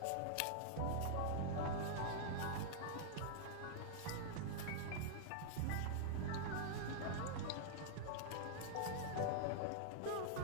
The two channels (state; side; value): different; both; correlation -0.01